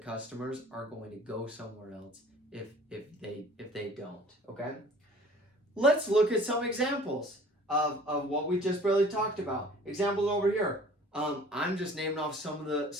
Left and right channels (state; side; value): normal; both; correlation 0.49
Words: are going to go somewhere else if they don't. Okay? Let's look at some examples of what we just barely talked about. Examples over here. I'm just naming off some of